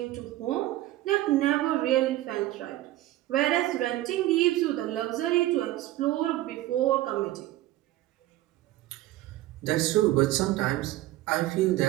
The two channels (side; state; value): left; quieter; 15.7 dB